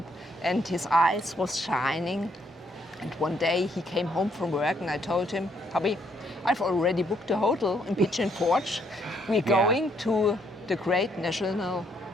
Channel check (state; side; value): normal; both; correlation 0.71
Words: and his eyes was shining. And one day he came home from work and I told him, hubby, I've already booked a hotel in Pigeon Forge. We're going to the Great National